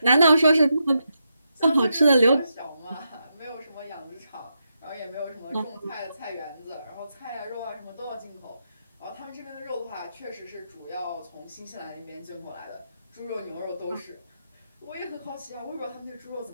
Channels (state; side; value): inverted; both; correlation -0.84